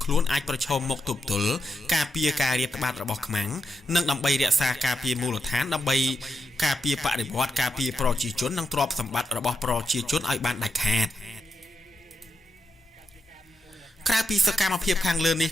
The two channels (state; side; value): normal; both; correlation 0.85